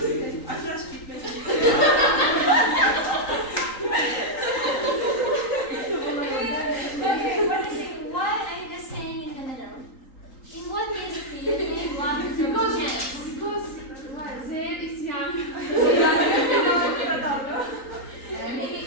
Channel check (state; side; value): late; right; 3.8 ms